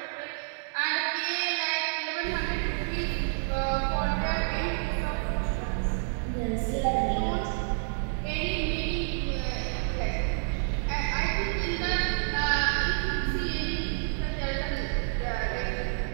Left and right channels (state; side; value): silent; left; digital silence